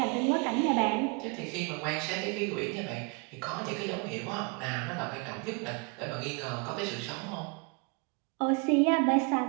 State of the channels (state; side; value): quieter; left; 31.7 dB